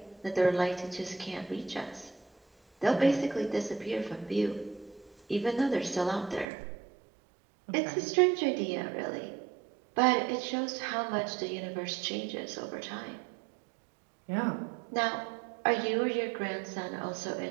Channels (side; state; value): left; drops out; at 6.5 s